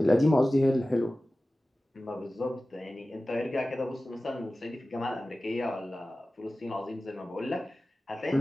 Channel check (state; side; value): normal; both; correlation 0.96